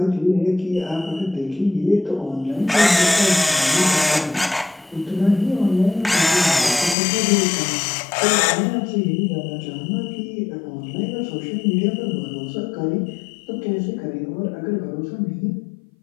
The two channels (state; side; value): drops out; right; at 7.0 s